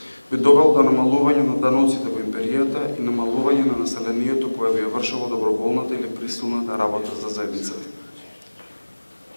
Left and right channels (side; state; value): both; inverted; correlation -1.00